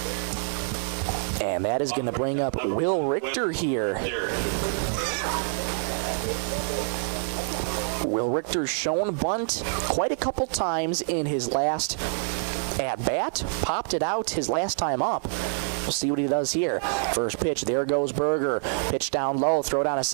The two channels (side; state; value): left; silent; digital silence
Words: And that is going to bring up Will Richter here. Will Richter's shown bunt quite a couple times in his last at-bat. Popped it out his last time up. We'll see what he does here. First pitch, there goes Berger. Pitch down low, throw down a